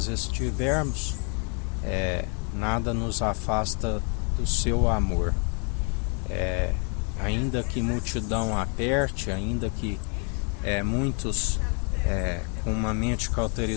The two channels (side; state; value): right; quieter; 38.9 dB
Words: estivermos, nada nos afasta do seu amor. Ainda que multidão aperte, ainda que muitos com uma mente